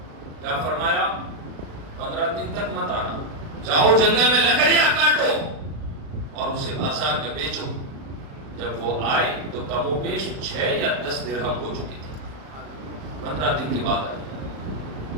کیا فرمایا؟ 15 دن تک مت آنا، جاؤ جنگل میں لکڑیاں کاٹو اور اسے بازار میں بیچو۔ جب وہ آئے تو کم و بیش 6 یا 10 درہم ہو چکی تھی۔ 15 دن کے بعد آئے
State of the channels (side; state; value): left; late; 36 ms